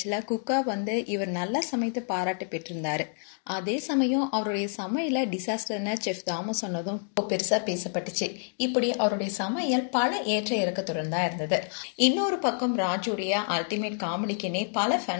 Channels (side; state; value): right; silent; 59 dB below the other